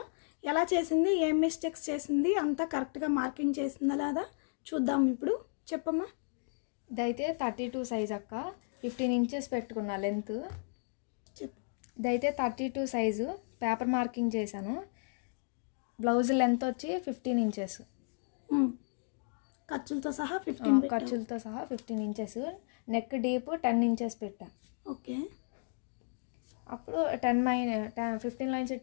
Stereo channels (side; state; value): right; silent; 55 dB below the other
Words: ఎలా చేసింది, ఏం మిస్టేక్స్ చేసింది, అంతా కరెక్ట్గా మార్కింగ్ చేసిందా లేదా చూద్దాం. ఇప్పుడు చెప్పమ్మా. ఇదైతే 32 సైజ్ అక్క, 15 ఇంచెస్ పెట్టుకున్నా లెంత్. చెప్పు. ఇదైతే 32 సైజు పేపర్ మార్కింగ్ చేశాను. బ్లౌజ్ లెంత్ వచ్చి 15 ఇంచెస్, ఖర్చులతో సహా 15 ఖర్చులతో సహా 15 ఇంచెస్. నెక్ డీప్ 10 ఇంచెస్ పెట్టా. ఓకే. అప్పుడు 15 లైన్స్